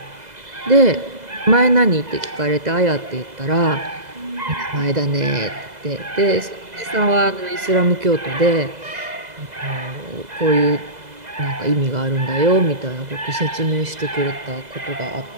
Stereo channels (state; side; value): late; left; 2.0 ms